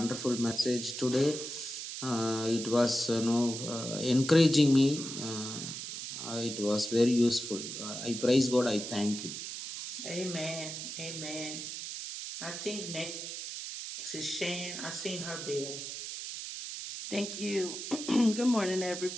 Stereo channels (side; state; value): right; noise; hiss, 7 dB below the sound